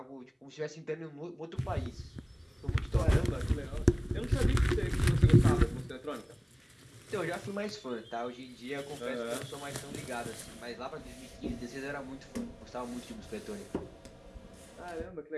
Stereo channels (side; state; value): both; identical; correlation 1.00